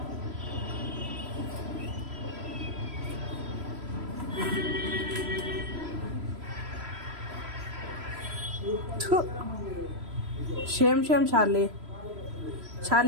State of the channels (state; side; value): late; left; 3.0 ms